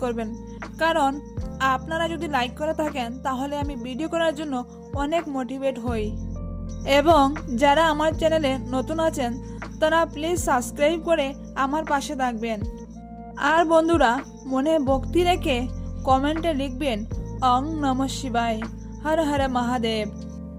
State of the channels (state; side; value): identical; both; correlation 1.00